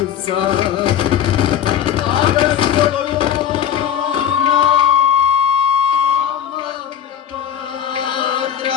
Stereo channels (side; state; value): right; quieter; 9.4 dB